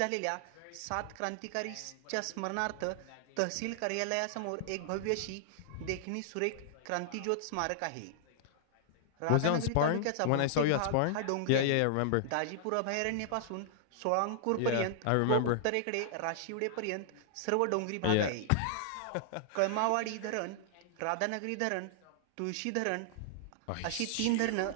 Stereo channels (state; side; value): different; both; correlation -0.01